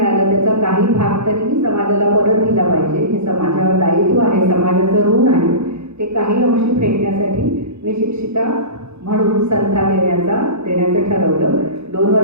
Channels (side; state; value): left; late; 0.80 ms